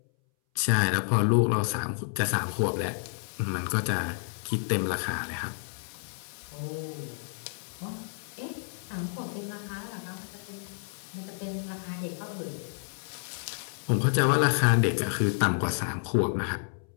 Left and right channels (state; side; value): silent; right; 58 dB below the other